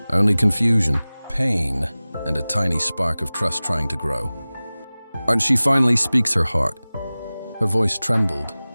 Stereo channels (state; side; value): inverted; both; correlation -0.99